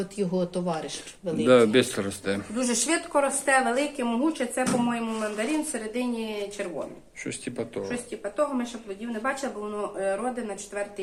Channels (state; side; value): identical; both; correlation 1.00